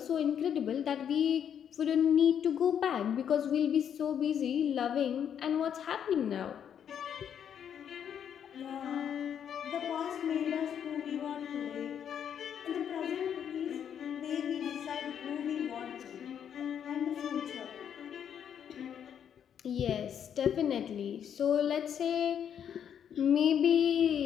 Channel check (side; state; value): right; quieter; 8.7 dB